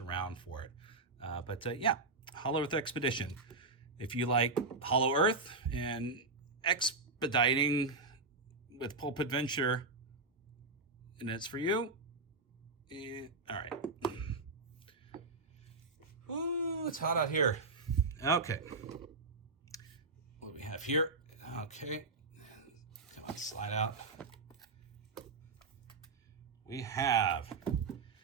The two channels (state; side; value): quieter; left; 3.8 dB